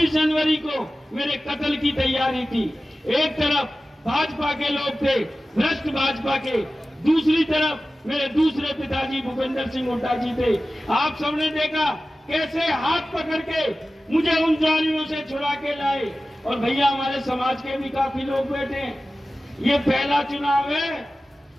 जनवरी को मेरे कत्ल की तैयारी थी। एक तरफ भाजपा के लोग थे, भ्रष्ट भाजपा के, दूसरी तरफ मेरे दूसरे पिताजी भूपेंद्र सिंह हुड्डा जी थे। आप सबने देखा कैसे हाथ पकड़ के मुझे उन जालियों से छुड़ा के लाए। और भैया हमारे समाज के भी काफी लोग बैठे हैं। ये पहला चुनाव है,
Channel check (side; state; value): both; normal; correlation 0.95